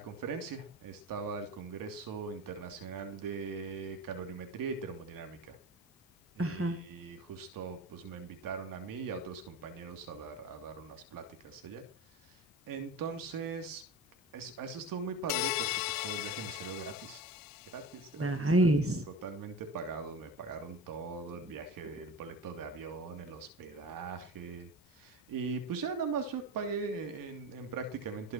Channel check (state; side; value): normal; both; correlation 0.31